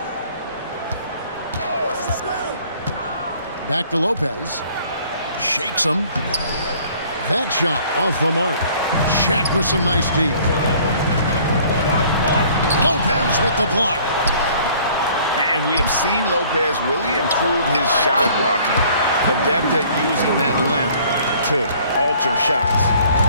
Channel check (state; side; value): inverted; both; correlation -0.55